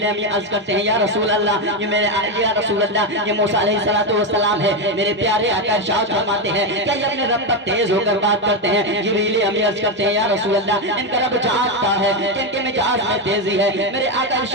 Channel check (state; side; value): normal; both; correlation 0.09